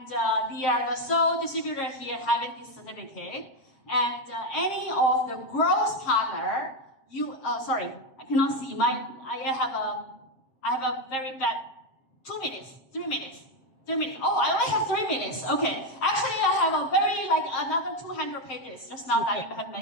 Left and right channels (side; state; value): right; late; 7.5 ms